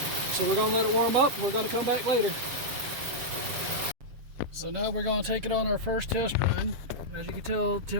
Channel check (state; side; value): late; left; 7.3 ms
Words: So we're going to let it warm up and we're going to come back later. So now we're going to take it on our first test run. As you can tell,